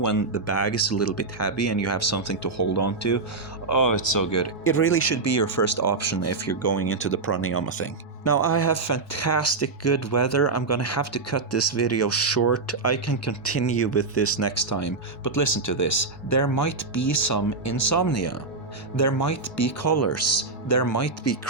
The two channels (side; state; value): left; quieter; 3.9 dB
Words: the bag is a little bit heavy and you have something to hold on to, oh, it's so good. It really should be your first option if you're going into the pranayama thing. Now I have fantastic good weather. I'm gonna have to cut this video short. I can continue with this next time, but listen to this. There might be some insomnia. There might be colors. There might be